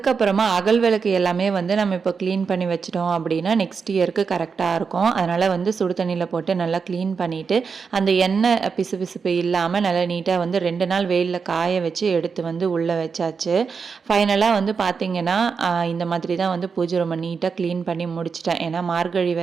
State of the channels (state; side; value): quieter; left; 5.5 dB